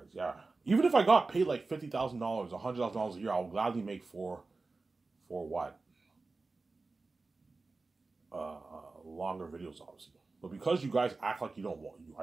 yeah. Even if I got paid like $50,000, $100,000 a year, I would gladly make for what? Longer videos, obviously. But because you guys act like you don't want,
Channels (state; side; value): quieter; left; 3.7 dB